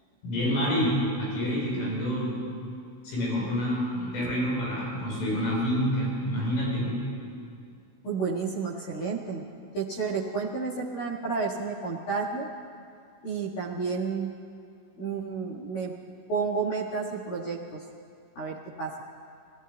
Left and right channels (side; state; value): right; late; 16 ms